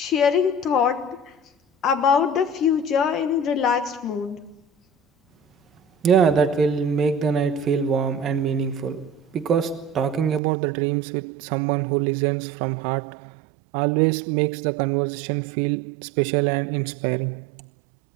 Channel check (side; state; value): left; drops out; at 10.4 s